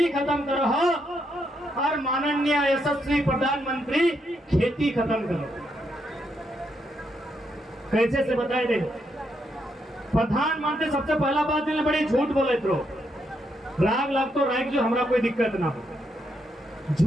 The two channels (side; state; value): both; normal; correlation 0.79